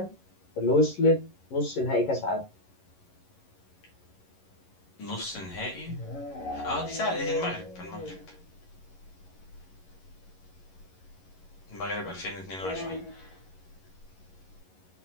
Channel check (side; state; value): right; late; 11 ms